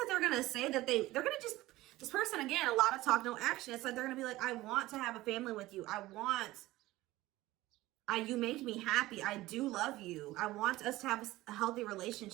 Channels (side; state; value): left; quieter; 17.7 dB